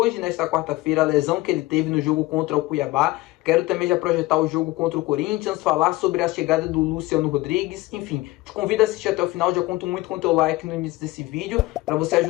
nesta quarta-feira, a lesão que ele teve no jogo contra o Cuiabá. Quero também já projetar o jogo contra o Corinthians, falar sobre a chegada do Luciano Rodrigues, enfim. Te convido a assistir até o final, já conto muito com o teu like no início desse vídeo, para você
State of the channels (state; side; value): quieter; right; 19.4 dB